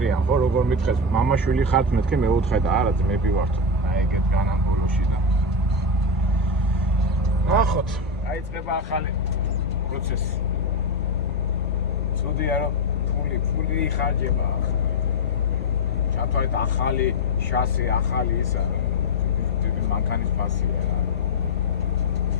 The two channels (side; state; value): both; normal; correlation 0.09